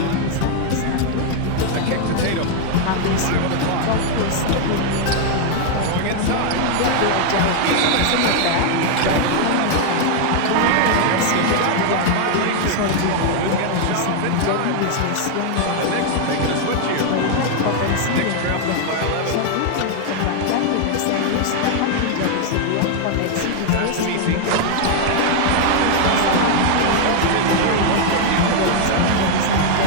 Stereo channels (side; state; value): both; different; correlation 0.00